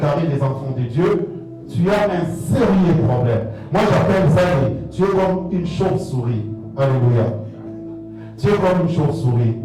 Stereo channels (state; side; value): identical; both; correlation 1.00